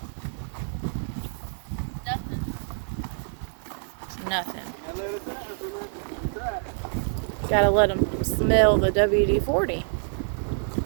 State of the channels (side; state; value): left; silent; 60 dB below the other